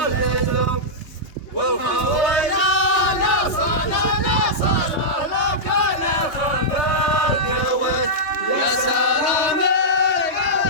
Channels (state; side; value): late; right; 3.2 ms